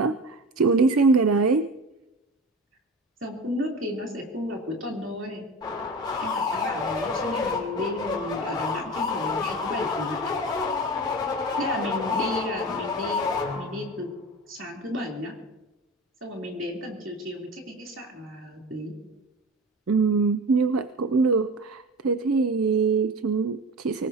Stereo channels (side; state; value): both; normal; correlation 0.32